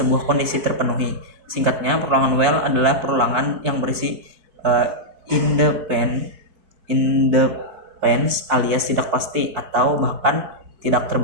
kondisi terpenuhi. Singkatnya, perulangan while adalah perulangan yang berisi independence alias tidak pasti atau bahkan tidak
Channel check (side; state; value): left; late; 4.6 ms